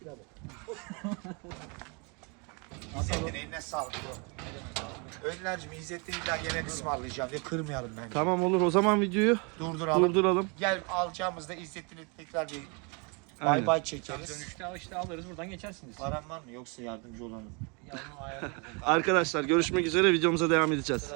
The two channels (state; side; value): quieter; left; 32.6 dB